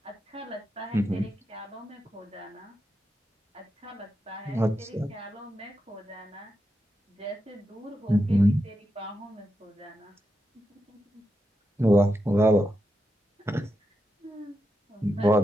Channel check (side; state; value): both; normal; correlation 0.87